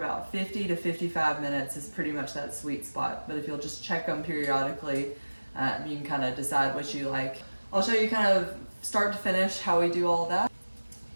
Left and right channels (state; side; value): inverted; both; correlation -1.00